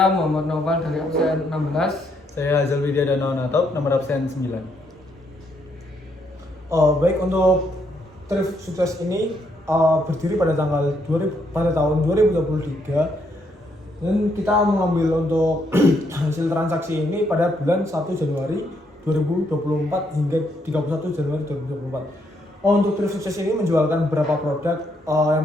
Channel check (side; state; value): both; normal; correlation 0.74